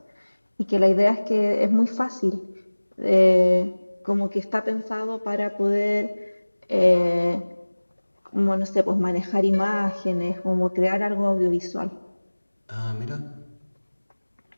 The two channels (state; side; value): inverted; both; correlation -1.00